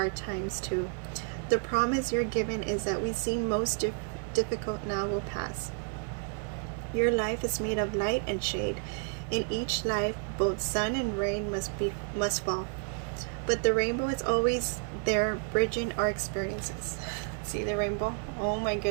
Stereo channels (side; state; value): left; quieter; 39.2 dB